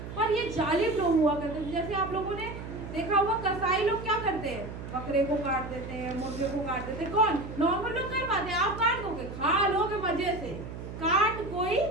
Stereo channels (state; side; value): noise; right; hum, 10 dB below the sound